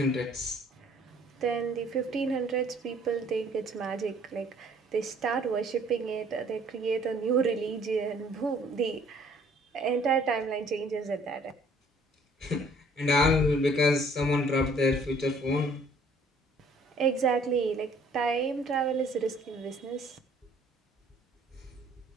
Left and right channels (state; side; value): normal; both; correlation 0.58